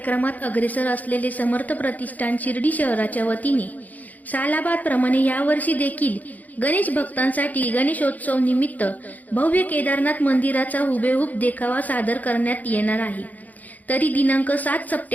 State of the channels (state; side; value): late; right; 0.079 ms